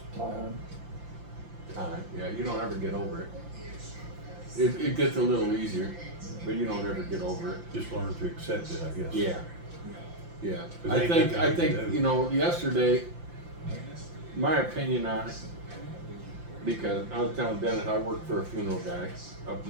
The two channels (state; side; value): late; left; 5.8 ms